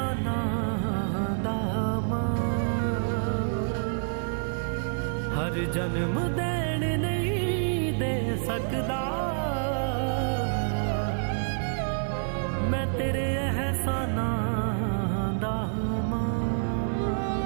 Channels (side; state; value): left; silent; 59 dB below the other